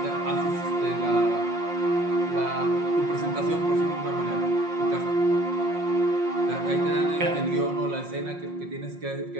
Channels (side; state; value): left; late; 5.6 ms